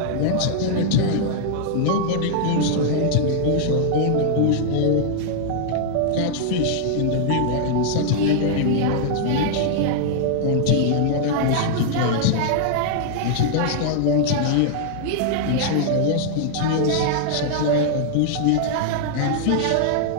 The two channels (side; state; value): both; different; correlation -0.01